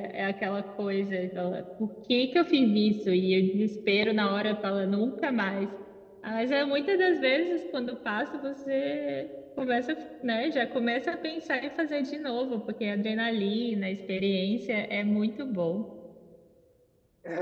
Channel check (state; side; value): identical; both; correlation 1.00